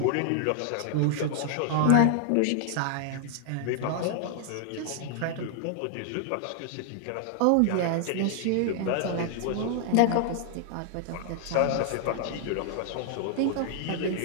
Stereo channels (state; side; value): different; both; correlation 0.00